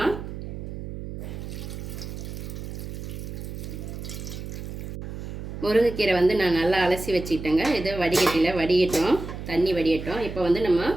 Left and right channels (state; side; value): noise; right; hum, 8 dB below the sound